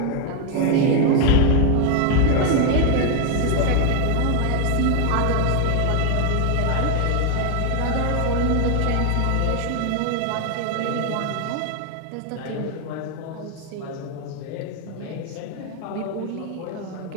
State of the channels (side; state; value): both; different; correlation 0.01